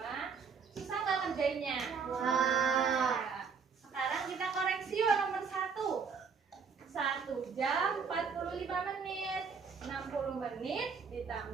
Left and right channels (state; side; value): quieter; left; 5.7 dB